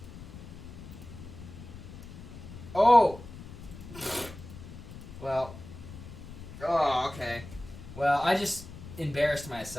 Oh! Well. Oh, okay. Well, I just embarrassed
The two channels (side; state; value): left; noise; rumble, 14 dB below the sound